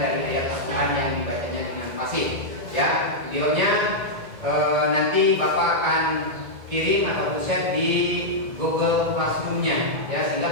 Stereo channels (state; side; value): late; left; 1.9 ms